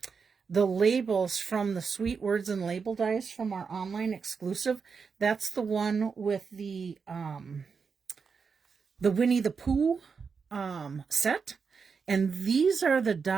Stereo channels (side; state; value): left; quieter; 5.6 dB